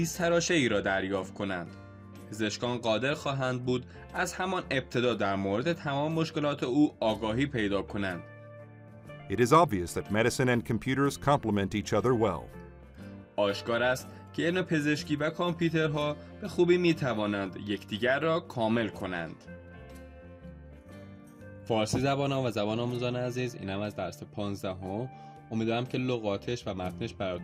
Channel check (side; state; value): both; identical; correlation 1.00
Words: را دریافت کنند. پزشکان قادر خواهند بود از همان ابتدا در مورد تمام مشکلات او آگاهی پیدا کنند. It is obvious that medicine and computers complement each other well. آشکار است که علم پزشکی و کامپیوترها به خوبی می توانند یکدیگر را کامل کنند. فارسی زبانان و زبان آموزان عزیز، اینم از درس 15. امیدوارم که لغاتش و متنش